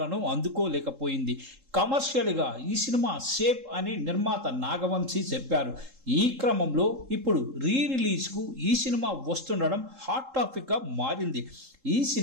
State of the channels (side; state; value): left; late; 3.7 ms